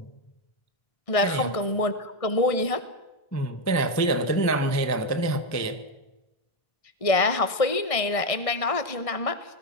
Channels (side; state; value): right; late; 1.6 ms